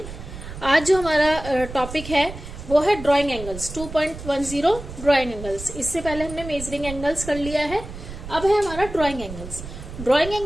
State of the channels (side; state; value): right; noise; rumble, 11 dB below the sound